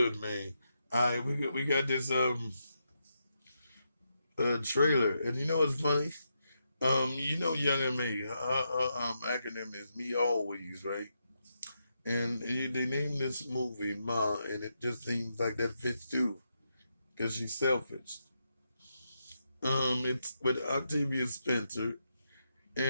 man? All right, we got this trailer, and you know what's funny? Young and me, acronym is me always, right? And they named this movie Ma, and it just seems like that fits too, because she's selfish. It's with Octavia Spencer,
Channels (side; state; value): both; inverted; correlation -0.84